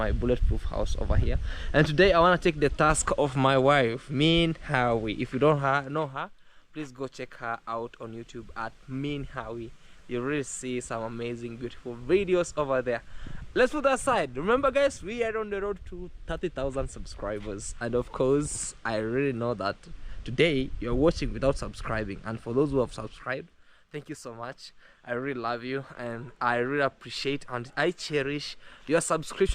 bulletproof house over here, and today I want to take the task of my wife, Mean Howie. If you don't know her, please go check her out on YouTube at Mean Howie. You really see some amazing, beautiful videos over there. Let's put that aside. Remember, guys, we are on the road to 30,000 subscribers, and of course, I really know that today you're watching without subscribing, and for those who have subscribed, thank you so much. I really love you, and I really appreciate and I cherish your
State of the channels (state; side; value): identical; both; correlation 1.00